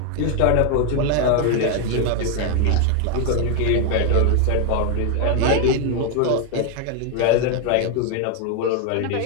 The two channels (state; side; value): different; both; correlation 0.01